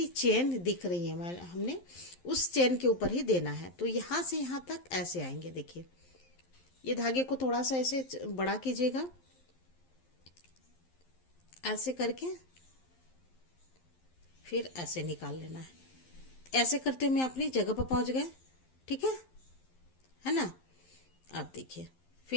चेन दिख रही है हमने उस चेन के ऊपर ही देना है। तो यहाँ से यहाँ तक ऐसे आएंगे। देखिए ये धागे को थोड़ा सा ऐसे बड़ा कीजिएगा, ऐसे करके फिर ऐसे निकाल लेना है। ऐसे करते हुए अपनी जगह पर पहुंच गए। ठीक है ना। अब देखिए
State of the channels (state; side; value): late; right; 11 ms